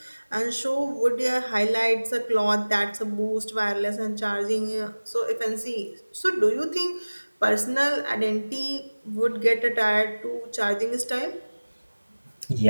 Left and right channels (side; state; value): both; inverted; correlation -1.00